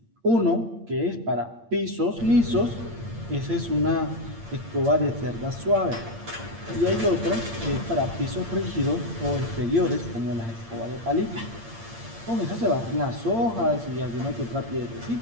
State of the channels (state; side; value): late; left; 8.7 ms